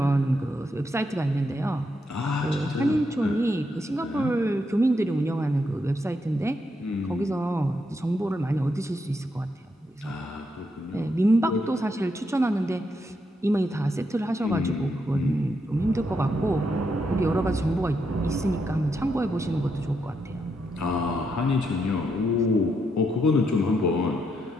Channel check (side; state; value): both; normal; correlation 0.80